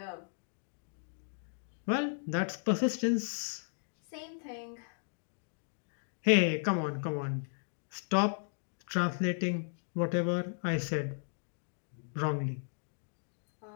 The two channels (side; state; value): right; silent; digital silence